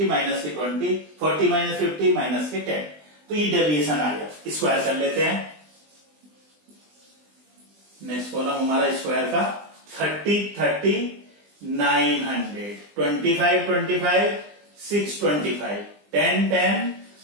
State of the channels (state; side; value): late; left; 20 ms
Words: माइनस के 20, 40 माइनस 50 माइनस के 10। तो ये डेविएशन आ गया। स्क्वायर कर लेते हैं। नेक्स्ट कॉलम हमारा स्क्वायर का 30 30 900, 25 25 625, 10 10